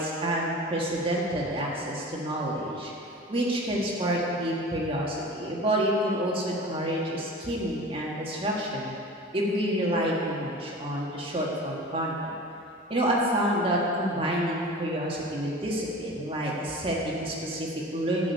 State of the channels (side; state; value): both; normal; correlation 0.38